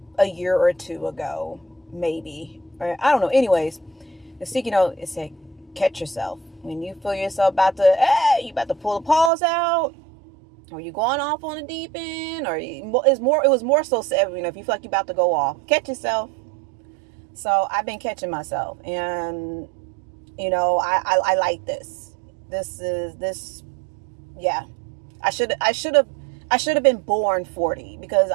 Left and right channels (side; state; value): left; drops out; at 9.3 s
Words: a year or two ago, maybe. Or, I don't know. Anyways, the sticky note, it said, catch yourself. When you feel yourself you about to pull the paws out, or you going off on the deep end, or it was more so, if you feel like you're about to go off, catch yourself. So I've been catching myself, and I like this. Yeah. I should have been born 40, because